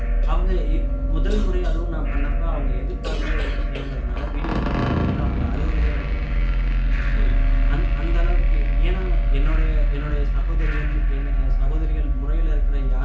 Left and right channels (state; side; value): identical; both; correlation 1.00